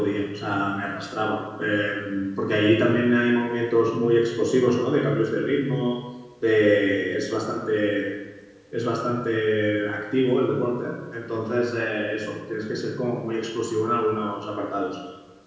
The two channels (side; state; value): both; identical; correlation 1.00